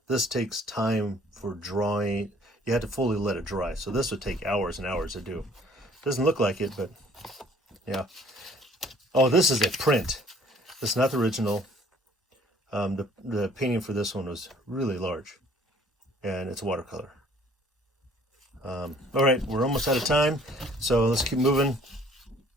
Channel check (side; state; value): both; normal; correlation 0.56